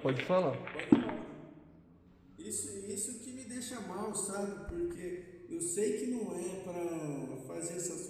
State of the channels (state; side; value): identical; both; correlation 1.00